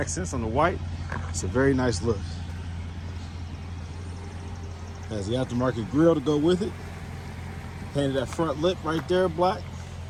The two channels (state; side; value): identical; both; correlation 1.00